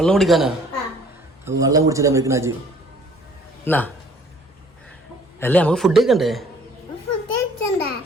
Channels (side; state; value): both; normal; correlation 0.56